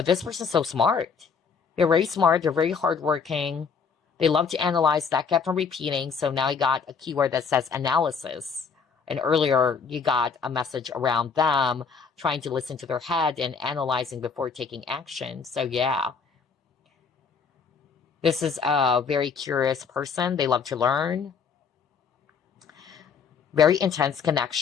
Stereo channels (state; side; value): quieter; right; 5.8 dB